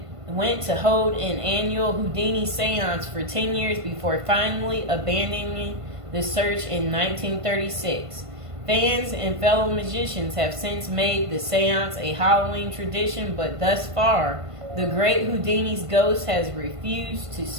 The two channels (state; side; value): late; left; 1.5 ms